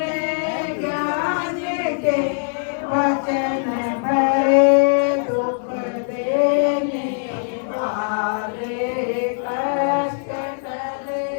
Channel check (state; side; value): silent; right; digital silence